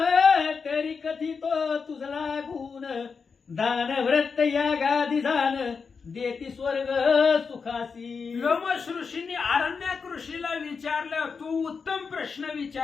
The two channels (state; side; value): quieter; right; 5.4 dB